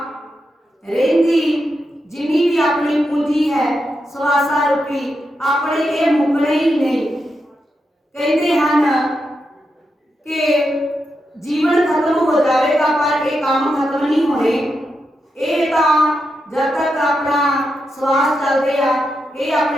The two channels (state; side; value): normal; both; correlation 0.86